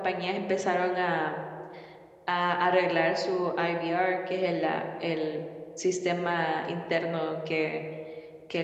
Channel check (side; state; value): both; identical; correlation 1.00